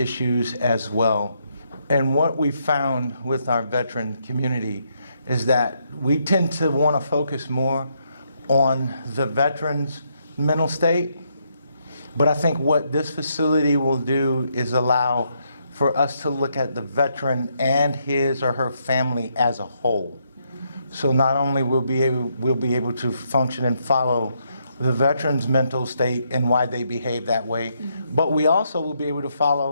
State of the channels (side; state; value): both; inverted; correlation -0.76